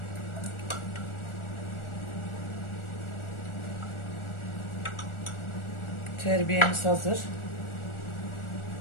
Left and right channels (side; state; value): right; late; 1.4 ms